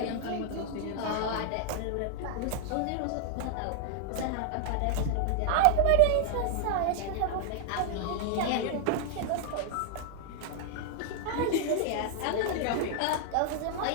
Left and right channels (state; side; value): different; both; correlation 0.00